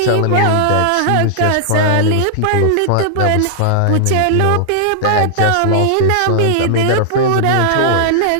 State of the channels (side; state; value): both; different; correlation -0.01